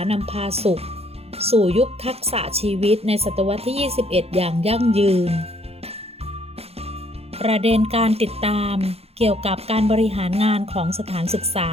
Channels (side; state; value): left; late; 0.29 ms